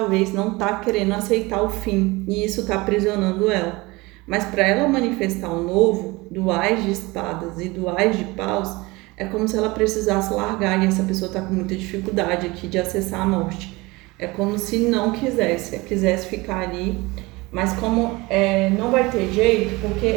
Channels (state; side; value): quieter; left; 22.8 dB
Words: não está querendo aceitar o fim e isso está aprisionando ela. Mas para ela manifestar o novo, do Ás de espadas e do Ás de paus, é como se ela precisasse largar e essa pessoa está com muita dificuldade aqui de acessar a morte. É como se não quisesse ficar ali, mas como não vai ter jeito,